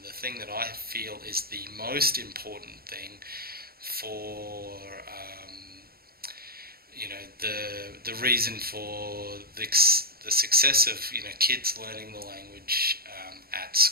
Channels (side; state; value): left; late; 0.44 ms